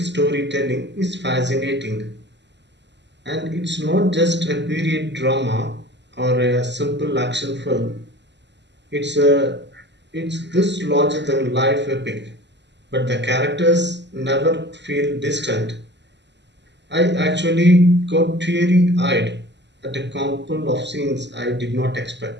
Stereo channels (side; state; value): left; late; 0.51 ms